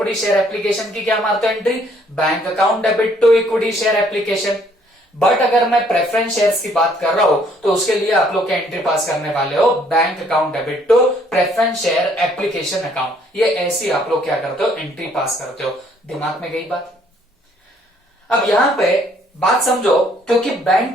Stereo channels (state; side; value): normal; both; correlation 0.64